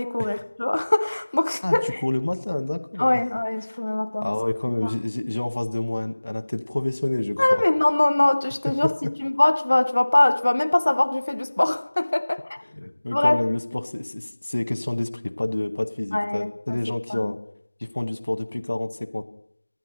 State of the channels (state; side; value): inverted; both; correlation -1.00